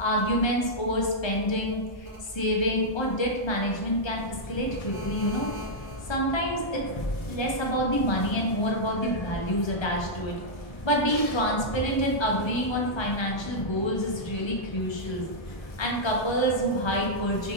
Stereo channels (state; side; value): late; right; 1.3 ms